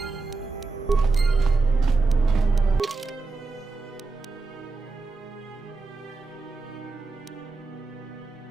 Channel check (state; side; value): quieter; left; 3.9 dB